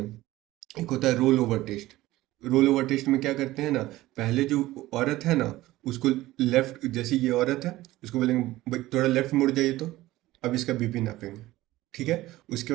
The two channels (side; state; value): left; quieter; 17.0 dB